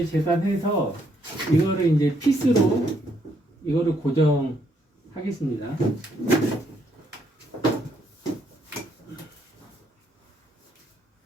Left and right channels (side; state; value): both; normal; correlation 0.72